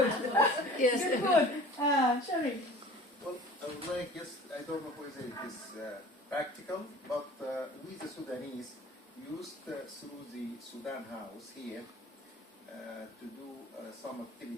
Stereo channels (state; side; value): normal; both; correlation 0.43